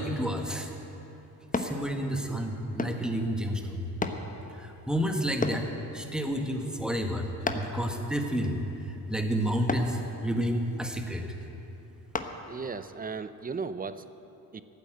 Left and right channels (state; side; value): normal; both; correlation 0.63